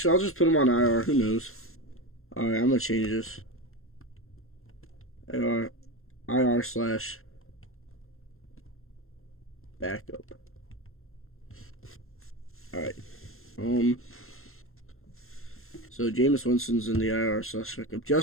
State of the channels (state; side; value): late; right; 0.61 ms